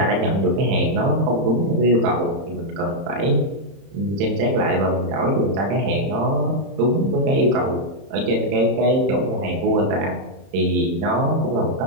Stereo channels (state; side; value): late; left; 31 ms